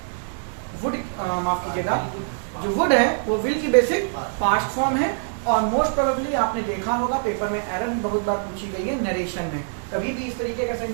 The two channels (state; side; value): silent; left; digital silence